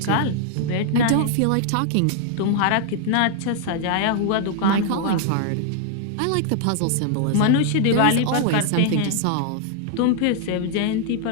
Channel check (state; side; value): different; both; correlation 0.00